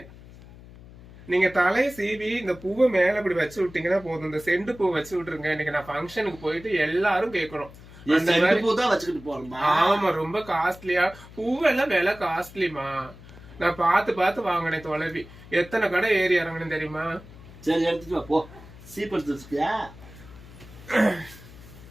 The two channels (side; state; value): left; noise; hum, 19 dB below the sound